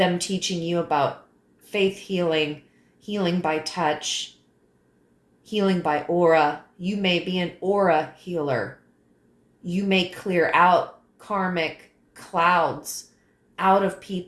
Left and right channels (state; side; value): identical; both; correlation 1.00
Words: teaching you about faith healing, healing by touch, healing by aura. You may be an aura healer. You may clear out karmic clouds out of